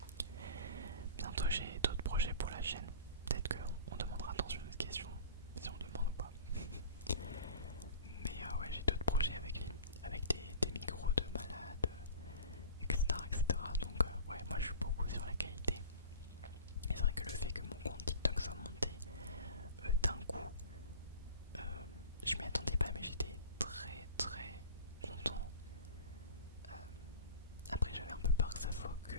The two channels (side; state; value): both; inverted; correlation -0.39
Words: Bientôt j'ai d'autres projets pour la chaîne. Peut-être qu'on demandera dans une autre question si on demande ou pas. Mais ouais, j'ai d'autres projets avec des micros de malade, etc. Donc ouais, moi je suis beaucoup sur la qualité. Et c'est vrai que le fait que mon compte TikTok soit monté d'un coup, je m'y attendais pas, mais j'étais très content. Après j'avais un peu peur que ça soit que,